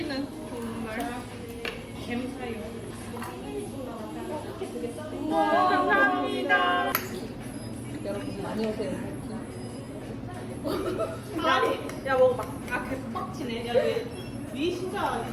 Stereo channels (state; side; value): identical; both; correlation 1.00